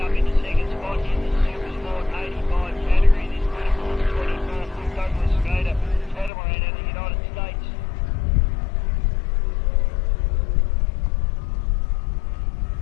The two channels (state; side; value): drops out; right; at 6.3 s